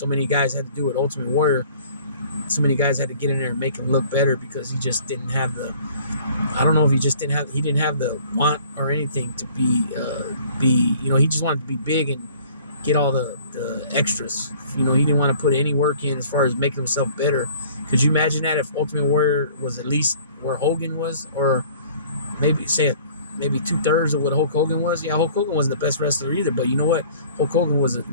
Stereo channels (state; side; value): inverted; both; correlation -0.52